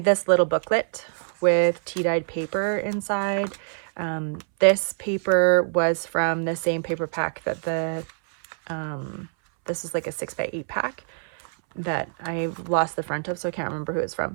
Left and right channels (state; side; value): silent; left; 62 dB below the other